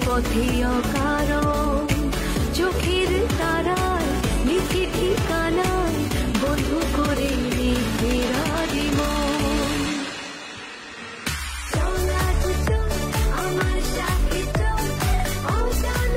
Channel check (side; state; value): both; identical; correlation 1.00